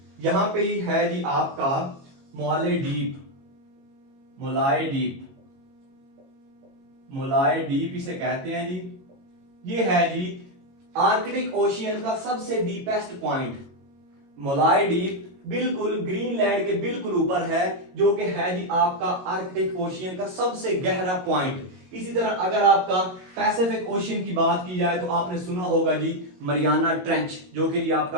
यहां पे ही है जी आपका मोले डीप, मोलाय डीप, मोलाय डीप इसे कहते हैं जी। ये है जी आर्कटिक ओशियन का सबसे डीपेस्ट पॉइंट, मोलाय डीप बिल्कुल ग्रीनलैंड के बिल्कुल ऊपर है, जो कि है जी आपका आर्कटिक ओशियन का सबसे गहरा पॉइंट। इसी तरह अगर आपका पैसिफिक ओशियन की बात की जाए तो आपने सुना होगा जी मरियाना ट्रेंच, जो कि जी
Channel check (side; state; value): left; late; 22 ms